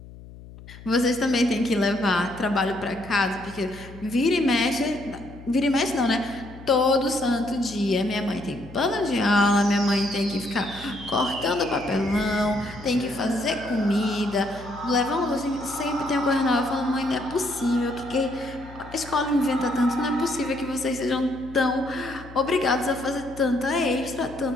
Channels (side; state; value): left; noise; hum, 17 dB below the sound